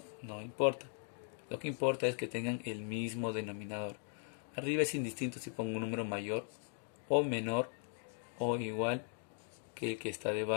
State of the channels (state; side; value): silent; right; 52 dB below the other